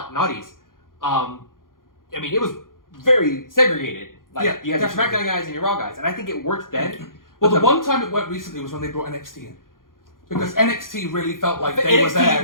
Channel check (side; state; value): right; late; 0.90 ms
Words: it was very segregated. Like, Yeah, you had your definitely. SmackDown guys and your Raw guys, and I think it worked then. well, But the one time it worked recently was when they brought NXT in, because NXT really felt like they were NXT there